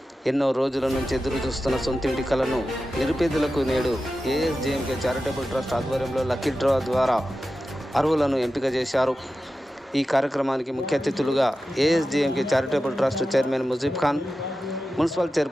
ఎన్నో రోజుల నుంచి ఎదురు చూస్తున్న సొంతింటి కలను నిరుపేదలకు నేడు ఏఎస్జేఎంకే చారిటబుల్ ట్రస్ట్ ఆధ్వర్యంలో లక్కీ డ్రా ద్వారా అర్హులను ఎంపిక చేశారు. ఈ కార్యక్రమానికి ముఖ్య అతిథులుగా ASJMK charitable trust chairman Mujeeb Khan, municipal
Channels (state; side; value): normal; both; correlation 0.93